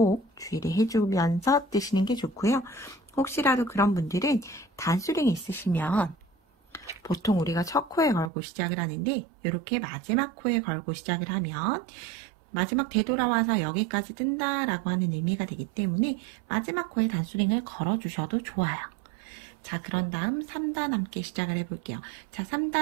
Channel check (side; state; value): left; drops out; at 8.3 s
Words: 주의를 해주면서 뜨시는 게 좋고요. 혹시라도 그런 분들은 단수링이 있으시면 보통 우리가 첫 코에 걸고 시작을 하는데 이렇게 마지막 코에 걸고 시작을 하면 마지막 되돌아와서 여기까지 뜬다 라고 하는 의미가 되기 때문에 마지막 코에 단수링을 걸어주셔도 좋아요. 자, 그런 다음 3단 함께 시작을 해볼게요. 자,